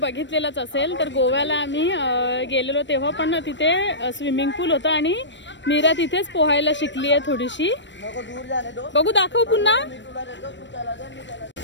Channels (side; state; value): right; late; 0.53 ms